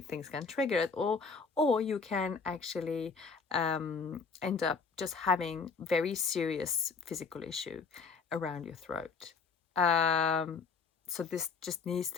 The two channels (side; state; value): right; quieter; 5.2 dB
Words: can trigger it, or you can actually end up just having very serious physical issue around your throat. So this just needs